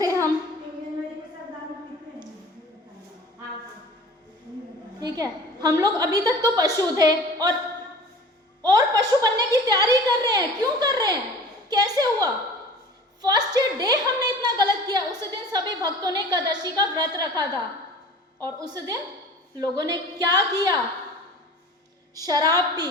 हम, ठीक है, हम लोग अभी तक तो पशु थे और पशु बनने की तैयारी कर रहे हैं। क्यों कर रहे हैं, कैसे हुआ? फर्स्ट डे हमने इतना गलत किया। उस दिन सभी भक्तों ने एकादशी का व्रत रखा था और उस दिन लोगों ने क्या किया? शराब पी,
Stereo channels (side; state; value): both; normal; correlation 0.42